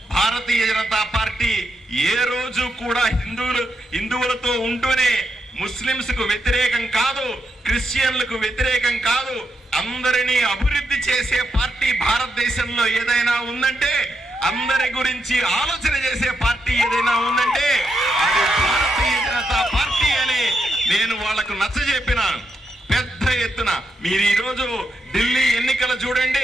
భారతీయ జనతా పార్టీ ఏ రోజు కూడా హిందువులతో ఉంటూనే ముస్లింస్ కు వ్యతిరేకం కాదు, క్రిస్టియన్లకు వ్యతిరేకం కాదు, అందరినీ అభివృద్ధి చేసే పార్టీ భారతదేశంలో ఏదైనా ఉందంటే, అందరి గురించి ఆలోచన చేసే పార్టీ ఏదైనా ఉందంటే అది భారతీయ జనతా పార్టీ అని నేను వాళ్లకు నచ్చజెప్పినాను. పెద్ద ఎత్తున మీరు ఈ రోజు ఢిల్లీ ఎన్నికలు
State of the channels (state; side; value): normal; both; correlation 0.82